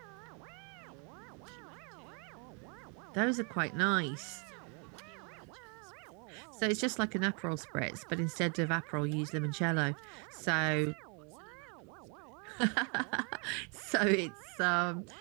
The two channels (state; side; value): quieter; left; 37.0 dB